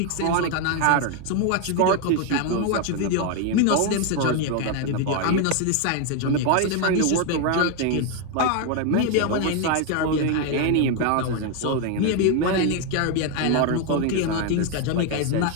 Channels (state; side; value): different; both; correlation 0.01